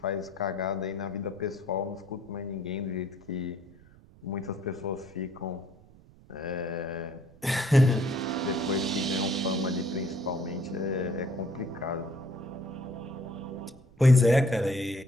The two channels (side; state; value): right; noise; rumble, 24 dB below the sound